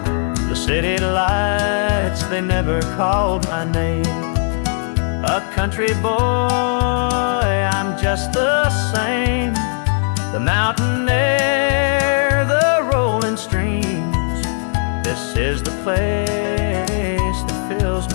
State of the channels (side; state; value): right; silent; digital silence